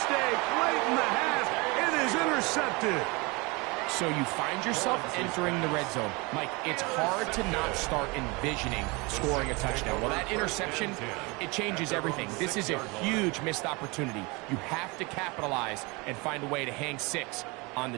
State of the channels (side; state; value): left; quieter; 26.7 dB